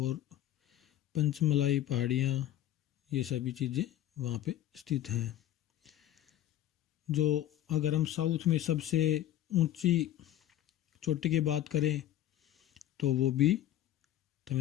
पंचमलाई पहाड़ियाँ, ये सभी चीज़ें वहाँ पे स्थित हैं। जो अगर हम साउथ में सबसे ऊंची चोटी की बात करें तो वो भी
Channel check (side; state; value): right; quieter; 12.6 dB